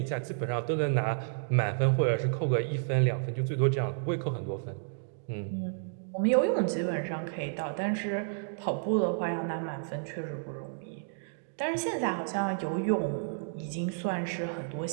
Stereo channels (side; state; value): left; silent; digital silence